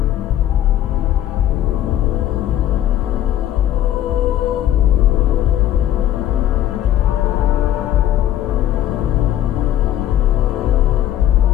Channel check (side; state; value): right; quieter; 12.2 dB